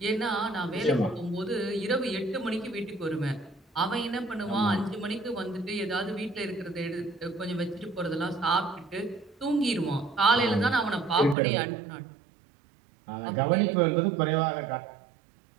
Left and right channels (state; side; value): drops out; left; at 11.4 s